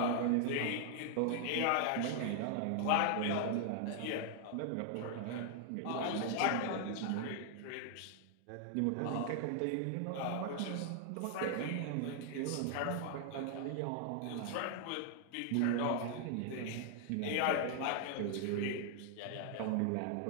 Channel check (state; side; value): different; both; correlation 0.00